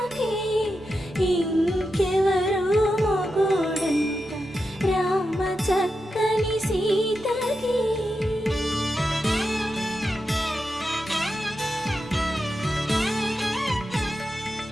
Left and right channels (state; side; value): normal; both; correlation 0.88